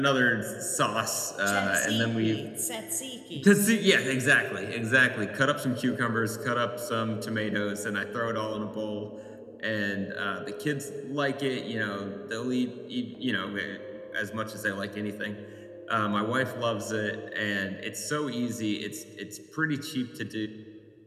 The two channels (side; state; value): both; identical; correlation 1.00